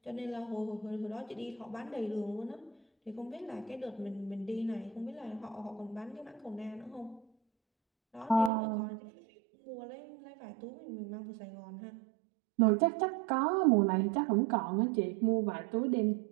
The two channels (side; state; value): left; drops out; at 8.5 s